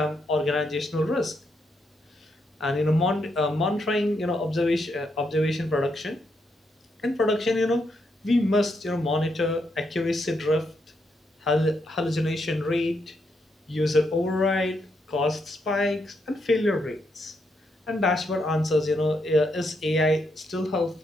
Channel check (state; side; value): normal; both; correlation 0.79